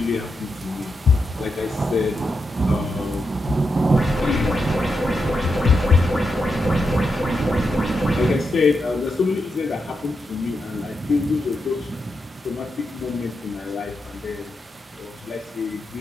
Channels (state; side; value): normal; both; correlation 0.86